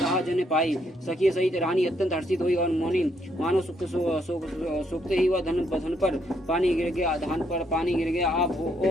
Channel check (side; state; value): both; normal; correlation 0.73